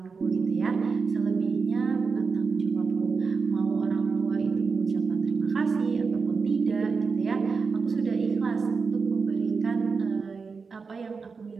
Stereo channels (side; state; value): left; quieter; 5.0 dB